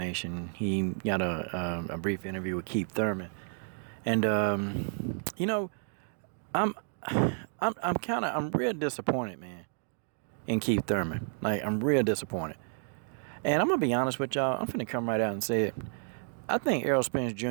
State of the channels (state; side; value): silent; left; 57 dB below the other